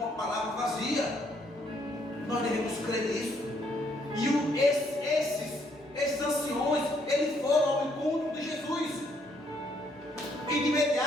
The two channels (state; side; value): normal; both; correlation 0.70